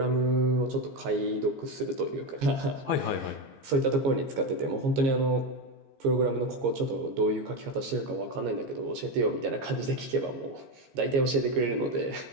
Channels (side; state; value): left; late; 15 ms